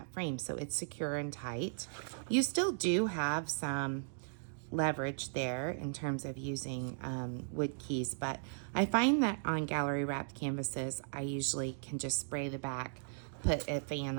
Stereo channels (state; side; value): silent; left; digital silence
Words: frame, so it's secure and tight. You still do have some leverage there in terms of using wood keys, but I find that on gallery wrapped canvases, I usually can just spray the back, put a fan